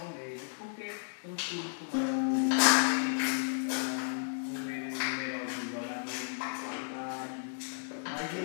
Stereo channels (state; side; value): silent; right; digital silence